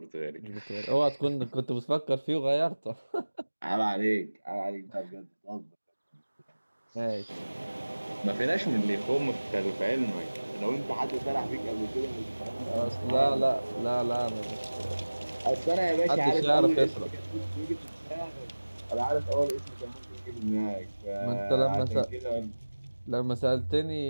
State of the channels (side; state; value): both; inverted; correlation -1.00